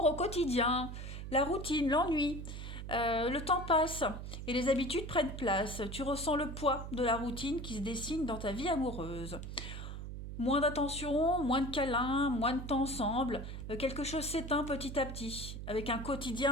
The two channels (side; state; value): right; noise; hum, 8 dB below the sound